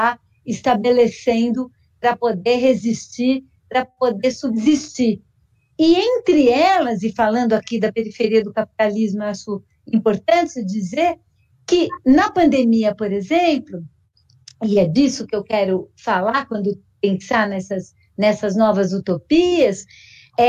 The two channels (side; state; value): both; identical; correlation 1.00